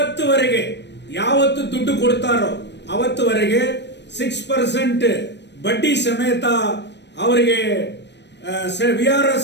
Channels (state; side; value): late; right; 0.50 ms